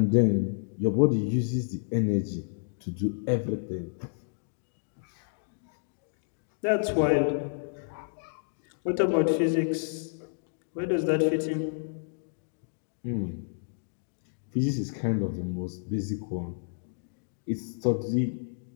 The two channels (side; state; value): right; silent; digital silence